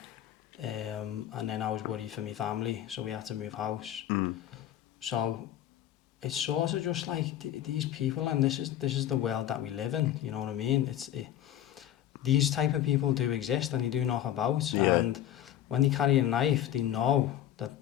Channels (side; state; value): right; quieter; 11.7 dB